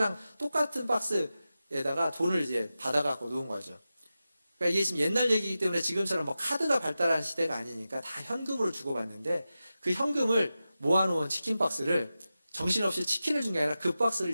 똑같은 박스에다가 돈을 이제 받아갖고 놓은 거죠. 그러니까 이게 지금 옛날 얘기이기 때문에 지금처럼 뭐 카드가 발달한 시대가 아니니까 다 현금으로 주고받는데 그 현금을 모아놓은 치킨 박스를 정신없이 치킨을 준 게 아니라 그 박스를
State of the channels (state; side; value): inverted; both; correlation -0.93